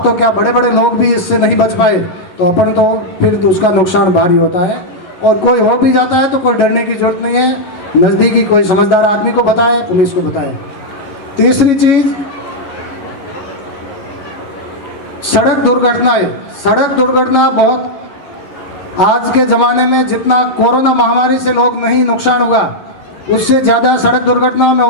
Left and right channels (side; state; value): right; late; 11 ms